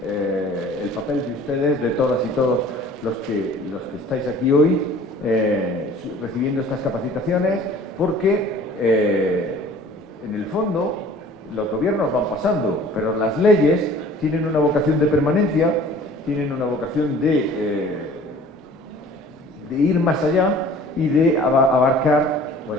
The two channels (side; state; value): both; normal; correlation 0.49